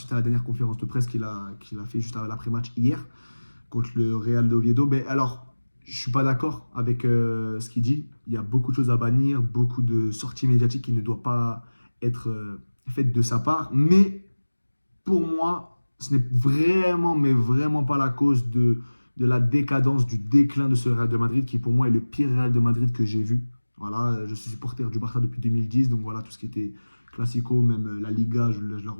à la dernière conférence de presse qu'il a fait juste après l'après-match hier contre le Real d'Oviedo. Mais alors, je ne suis pas d'accord avec ce qu'il dit. Il y a beaucoup de choses à bannir, beaucoup de sorties médiatiques qui ne doivent pas être faites de sa part. Mais pour moi, ce n'est vraiment, mais vraiment pas la cause de la décadence, du déclin de ce Real de Madrid, qui pour moi est le pire Real de Madrid que j'ai vu. Voilà, je suis supporter du Barça depuis 2010, donc voilà, tout ce qui était Classico, même la Liga, je le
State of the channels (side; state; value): both; inverted; correlation -1.00